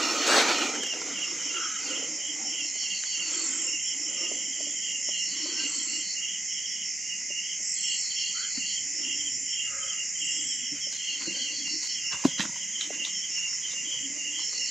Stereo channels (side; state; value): both; normal; correlation 0.89